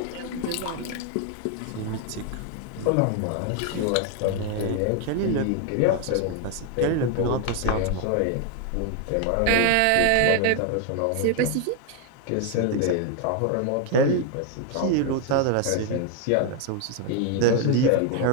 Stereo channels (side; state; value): both; different; correlation 0.00